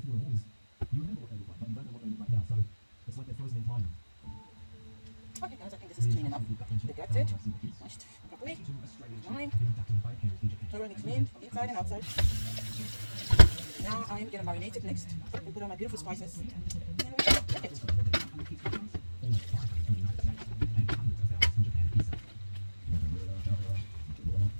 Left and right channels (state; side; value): inverted; both; correlation -1.00